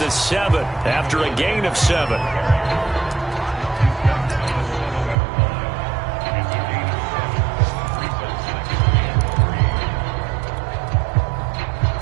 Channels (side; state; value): left; drops out; at 5.2 s